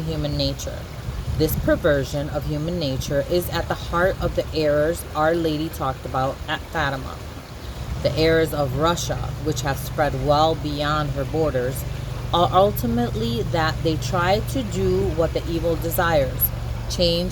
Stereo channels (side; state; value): both; identical; correlation 1.00